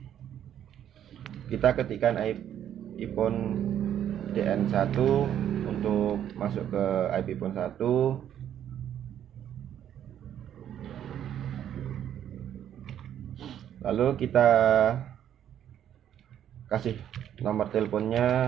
Kita ketikkan iPhone DN1 untuk masuk ke IP pun 1. Lalu kita kasih nomor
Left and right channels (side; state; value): left; quieter; 10.2 dB